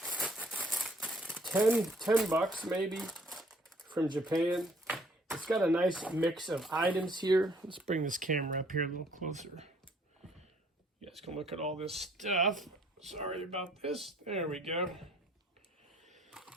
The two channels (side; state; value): both; normal; correlation 0.61